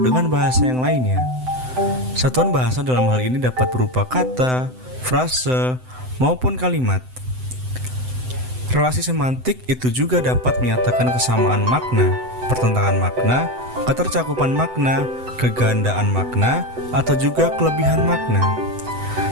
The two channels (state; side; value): late; left; 7.9 ms